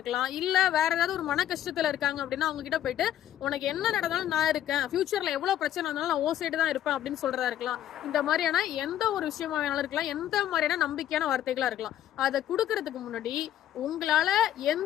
இல்ல வேற ஏதாவது ஒரு மன கஷ்டத்துல இருக்காங்க அப்படின்னா அவங்க கிட்ட போயிட்டு உனக்கு என்ன நடந்தாலும் நான் இருக்கேன், ஃபியூச்சர்ல எவ்வளவு பிரச்சனை இருந்தாலும் நான் ஓ சைடு தான் இருப்பேன் அப்படின்னு சொல்றதா இருக்கலாம். இந்த மாதிரியான எந்த ஒரு விஷயமா வேணாலும் இருக்கலாம், எந்த மாதிரியான நம்பிக்கையான வார்த்தைகளா இருக்கலாம். அதை கொடுக்கறதுக்கு முன்னாடி உங்களால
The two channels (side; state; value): right; quieter; 11.8 dB